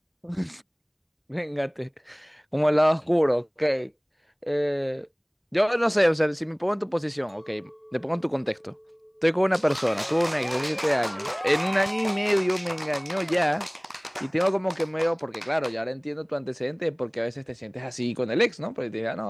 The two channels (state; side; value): identical; both; correlation 1.00